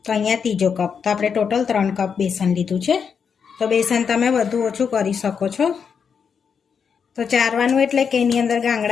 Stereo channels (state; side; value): quieter; right; 6.5 dB